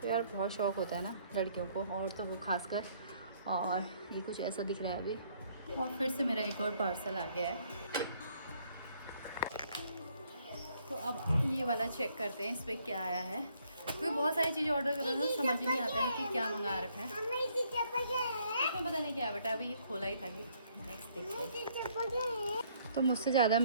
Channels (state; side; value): inverted; both; correlation -0.67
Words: तो यार बहुत शौक़ होता है ना लड़कियों को, और तो वो खासकर। और ये कुछ ऐसा दिख रहा है अभी। और फिर से मेरा एक और पार्सल आ गया है, तो अब ये वाला चेक करते हैं इस पर क्या आया है। क्योंकि बहुत सारी चीज़ें ऑर्डर कर रहे हैं तो समझ ही नहीं आता है कि क्या मंगा रखा है। इसमें पता नहीं क्या है बेटा, अभी ये खोला ही था कि नेक्स्ट देखिए। तो मुझसे ज़्यादा